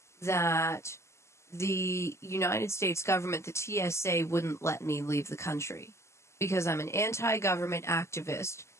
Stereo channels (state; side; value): late; right; 0.13 ms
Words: that the United States government, the TSA, wouldn't let me leave the country because I'm an anti-government activist